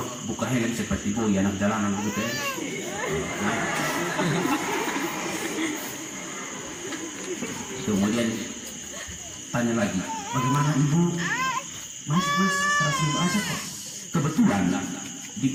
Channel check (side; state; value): both; identical; correlation 1.00